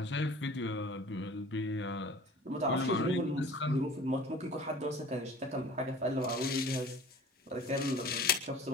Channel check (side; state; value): both; normal; correlation 0.44